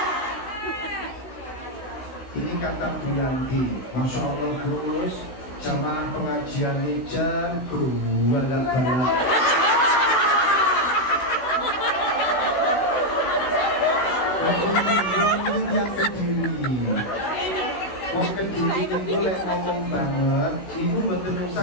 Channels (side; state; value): right; late; 16 ms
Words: Ini kata Bu Yanti, Masya Allah Gus, jamaah pengajian ini jago balak-balak. Ini yang Kediri. Mau Kediri itu lek ngomong banget, itu betul